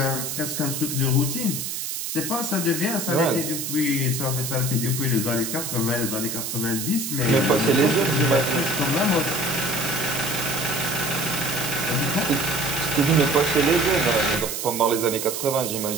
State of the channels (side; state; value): right; noise; hiss, 4 dB below the sound